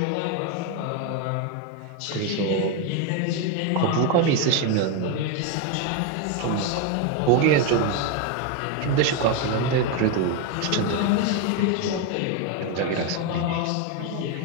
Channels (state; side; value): different; both; correlation 0.02